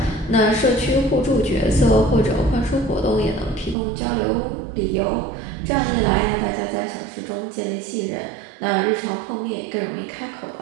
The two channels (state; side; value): drops out; left; at 3.8 s